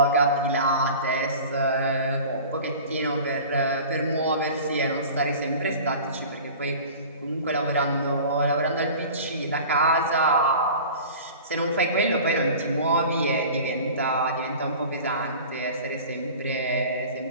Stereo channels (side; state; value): both; inverted; correlation -0.39